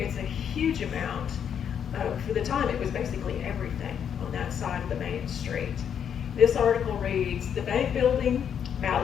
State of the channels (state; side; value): quieter; right; 8.3 dB